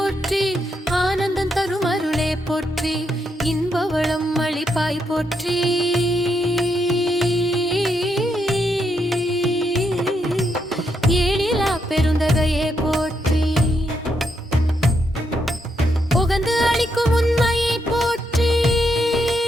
ஆனந்தம் தரும் அருளே போற்றி, இன்பவளம் அளிப்பாய் போற்றி. ஏழிலா பெருந்தகையே போற்றி, உகந்து அளிக்கும் உண்மையை போற்றி,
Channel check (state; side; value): normal; both; correlation 0.79